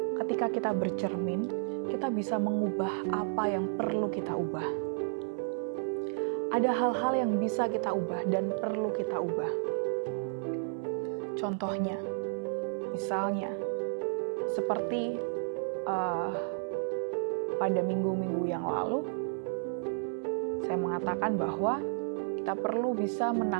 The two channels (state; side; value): silent; left; digital silence